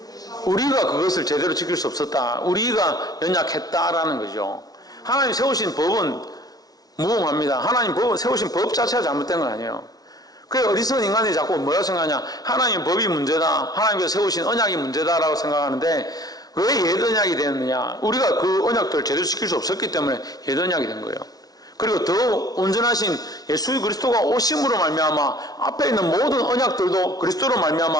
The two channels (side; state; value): right; late; 0.19 ms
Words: 우리가 그것을 제대로 지킬 수 없었다, 우리가 연약했다라는 거죠. 하나님 세우신 법은 무음합니다. 하나님 세우신 법 자체가 잘못된 건 아니에요. 그래, 어리석은 인간이 자꾸 뭐라고 생각하냐? 하나님의 법이 문제다, 하나님께서 세우신 언약이 문제다라고 생각하는데, 왜 옛 언약이 되었느냐? 우리가 그 언약들을 제대로 지킬 수 없었기 때문에 옛 언약이 된 거예요. 그리고 더 온전하신 예수 그리스도가 오심으로 말미암아 앞에 있는 모든 언약들도 그리스도로